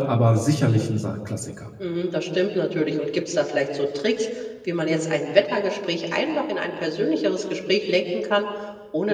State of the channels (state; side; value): identical; both; correlation 1.00